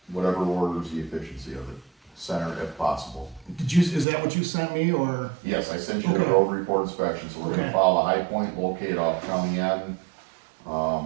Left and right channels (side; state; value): left; drops out; at 4.0 s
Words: whatever orders the efficiency of it, center if possible. Did you, is that what you sent me or? Yes, I sent you the Okay. road report inspection, so we're gonna Okay. follow High Point, locate off County End,